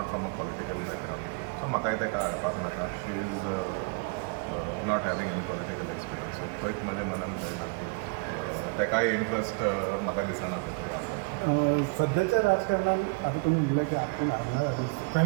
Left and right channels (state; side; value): quieter; left; 32.6 dB